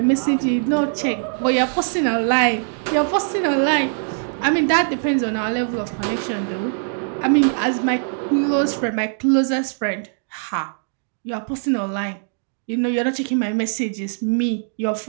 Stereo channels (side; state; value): left; silent; digital silence